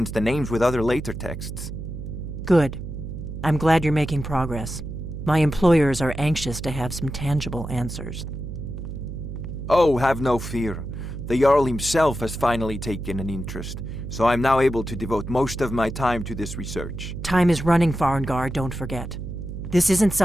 the names with other later texts. Good. I'm glad you're making progress. My employers are anxious to have some tangible answers. Oh, have no fear. The Jarl himself has finally taken an interest, so I'm now able to devote most of my time to this research. Time is running, Farengar, don't forget. This isn't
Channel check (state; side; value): noise; right; hum, 8 dB below the sound